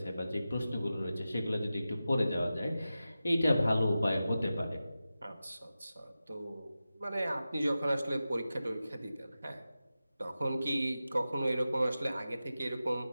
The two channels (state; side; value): inverted; both; correlation -0.93